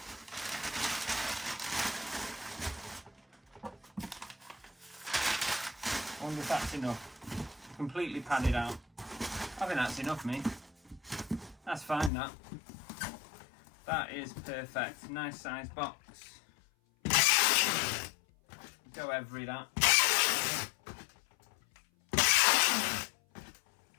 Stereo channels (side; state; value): right; drops out; at 12.1 s